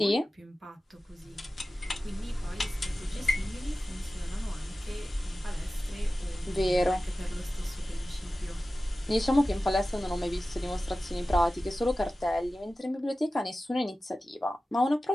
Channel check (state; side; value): normal; both; correlation 0.95